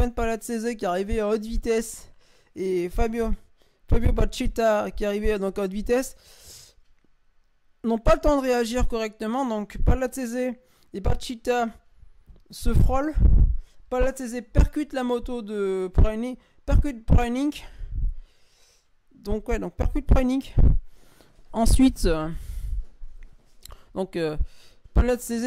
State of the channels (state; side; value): identical; both; correlation 1.00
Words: Palazzese qui arrivait à haute vitesse et Fabio Bacchetta qui arrivait donc à haute vitesse n'ont pas le temps de réagir correctement. Donc Palazzese et Bacchetta se frôlent. Palazzese percute la moto de Preining. Percute Preining. Ensuite,